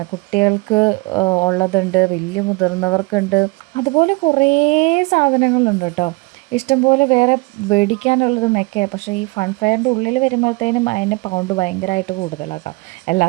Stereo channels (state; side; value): quieter; left; 26.0 dB